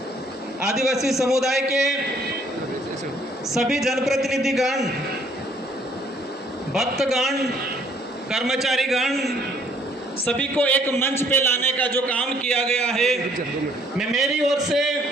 आदिवासी समुदाय के सभी जनप्रतिनिधिगण, भक्तगण, कर्मचारीगण सभी को एक मंच पे लाने का जो काम किया गया है, मैं मेरी ओर से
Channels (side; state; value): both; normal; correlation 0.63